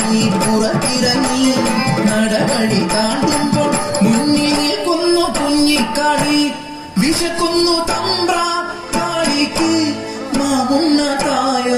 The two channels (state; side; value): identical; both; correlation 1.00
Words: പുറത്തിറങ്ങി നടവഴി താണ്ടുമ്പോൾ മുന്നിൽ നിൽക്കുന്നു കുഞ്ഞിക്കാളി വിശക്കുന്നു തമ്പ്രാ കാളിക്ക് മാമുന്ന